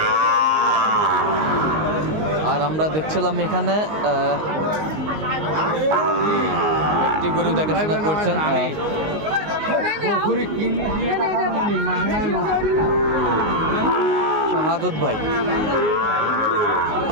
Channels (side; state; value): left; late; 19 ms